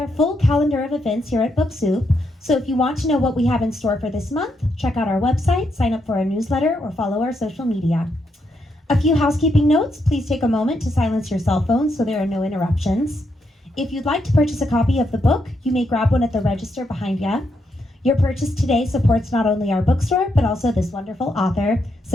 full calendar of events here at Book Soup, so if you want to know what we have in store for this month, check out our website, sign up for our newsletter, or follow our social media. A few housekeeping notes. Please take a moment to silence your cell phones so there are no interruptions. If you'd like to purchase a copy of the book, you may grab one at the register behind you. Your purchase today supports not only our bookstore, but also this wonderful author.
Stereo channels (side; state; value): both; normal; correlation 0.79